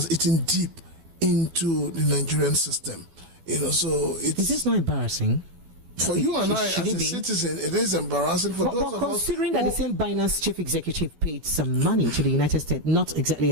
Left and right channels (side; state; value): left; late; 12 ms